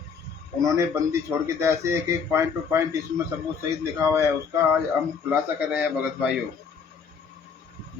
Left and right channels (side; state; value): right; quieter; 6.0 dB